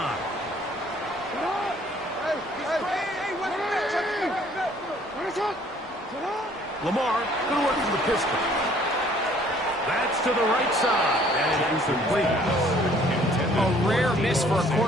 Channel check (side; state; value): both; normal; correlation 0.58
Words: Lamar going to work from the pistol. That's to the right side, and incomplete. A rare miss for a